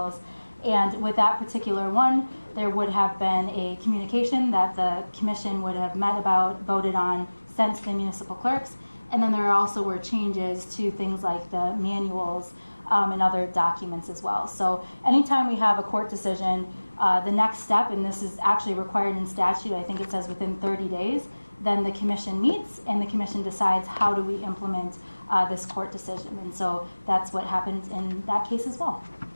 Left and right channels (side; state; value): both; inverted; correlation -1.00